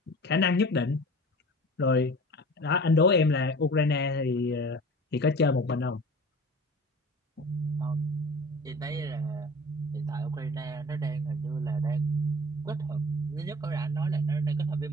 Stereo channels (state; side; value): normal; both; correlation 0.41